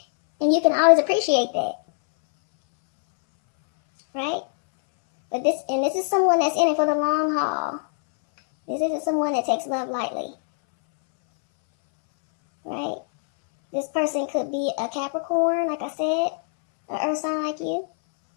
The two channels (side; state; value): right; silent; 63 dB below the other